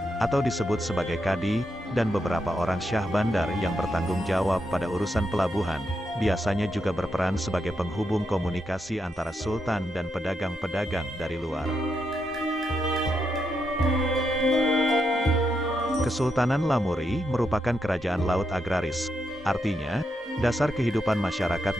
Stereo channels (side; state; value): both; normal; correlation 0.83